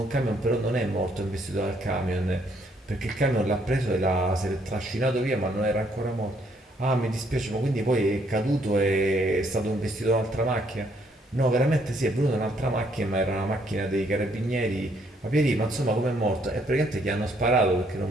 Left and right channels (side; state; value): both; normal; correlation 0.69